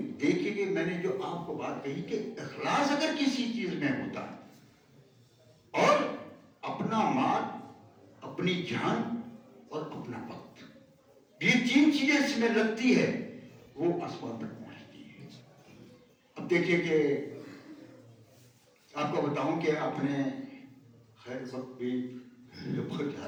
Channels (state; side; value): identical; both; correlation 1.00